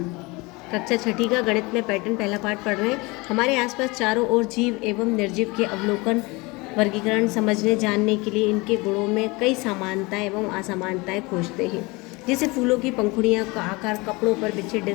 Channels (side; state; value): right; quieter; 24.8 dB